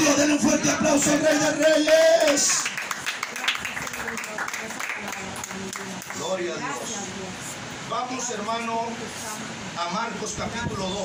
Denle un fuerte aplauso al Rey de Reyes. Gloria a Dios. Vamos, hermano, a Marcos capítulo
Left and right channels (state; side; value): identical; both; correlation 1.00